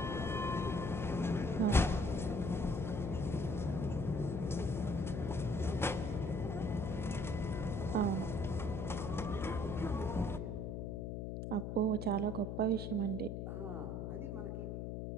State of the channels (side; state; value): left; noise; hum, 4 dB below the sound